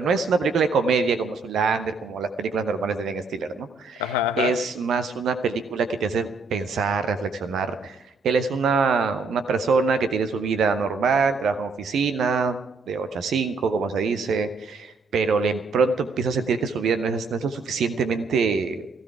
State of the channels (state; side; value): quieter; left; 4.1 dB